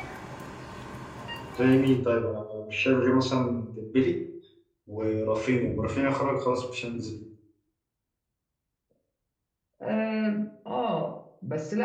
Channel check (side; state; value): both; identical; correlation 1.00